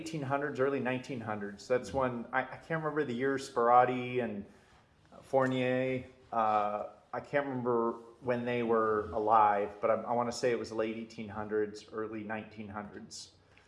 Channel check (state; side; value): identical; both; correlation 1.00